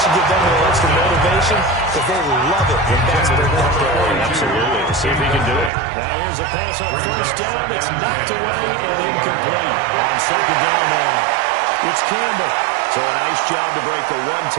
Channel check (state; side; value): drops out; left; at 5.7 s